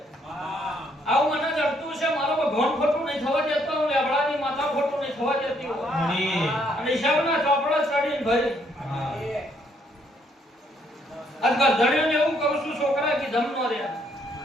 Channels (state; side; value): normal; both; correlation 0.70